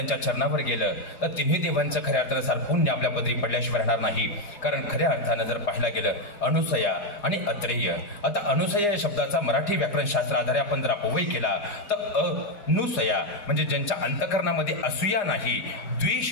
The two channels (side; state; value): right; late; 4.9 ms